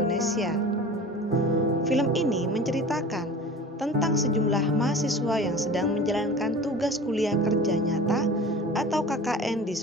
Film ini menceritakan tentang sejumlah mahasiswa yang sedang menjalankan tugas kuliah kerja nyata atau KKN di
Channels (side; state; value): both; normal; correlation 0.38